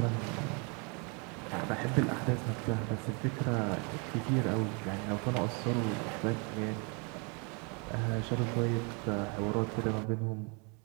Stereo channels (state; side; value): quieter; left; 33.5 dB